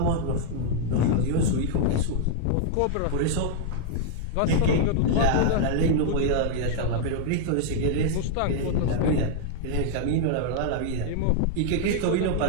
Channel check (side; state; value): both; different; correlation -0.01